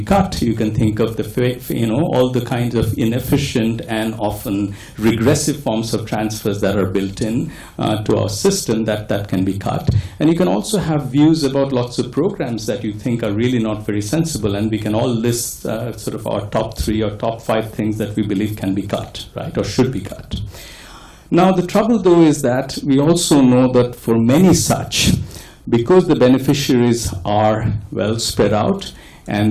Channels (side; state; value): both; identical; correlation 1.00